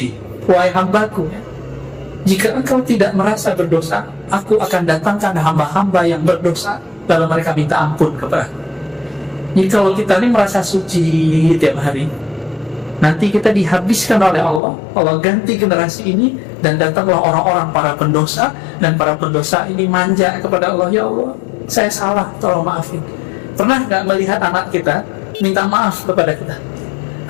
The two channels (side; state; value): right; drops out; at 14.6 s